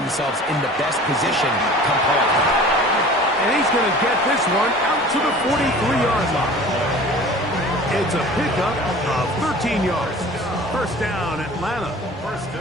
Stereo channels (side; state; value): both; normal; correlation 0.43